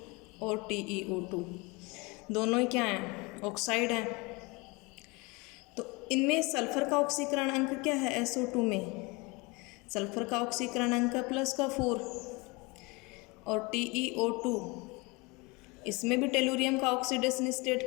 और TeO2 दोनों ही क्या हैं, ऑक्साइड हैं। तो इनमें सल्फर का ऑक्सीकरण अंक क्या है, SO2 में सल्फर का ऑक्सीकरण अंक +4 और TeO2 इसमें भी टेलुरियम का ऑक्सीडेशन स्टेट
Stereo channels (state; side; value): quieter; right; 26.3 dB